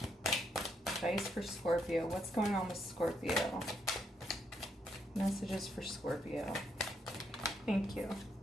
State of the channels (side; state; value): both; normal; correlation 0.76